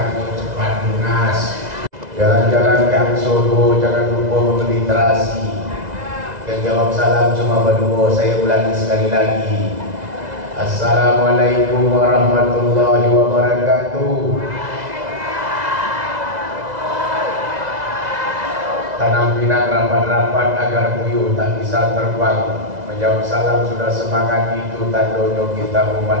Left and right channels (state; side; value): late; left; 2.0 ms